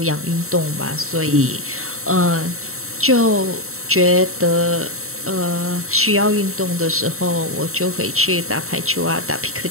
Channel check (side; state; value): left; late; 0.63 ms